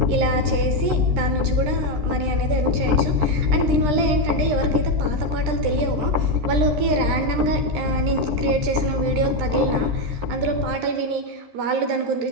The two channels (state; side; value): late; left; 13 ms